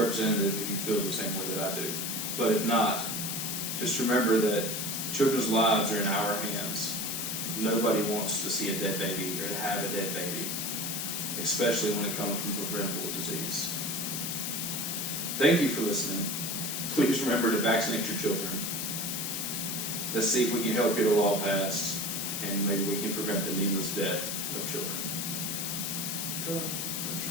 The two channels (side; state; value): left; noise; hiss, 2 dB below the sound